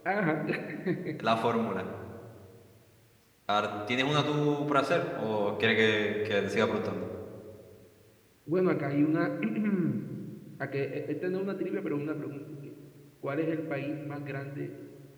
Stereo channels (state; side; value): identical; both; correlation 1.00